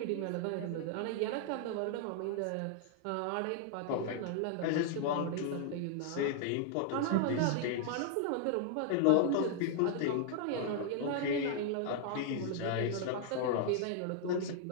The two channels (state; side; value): different; both; correlation -0.01